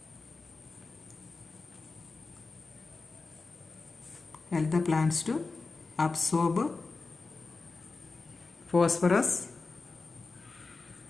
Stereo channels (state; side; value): quieter; right; 3.9 dB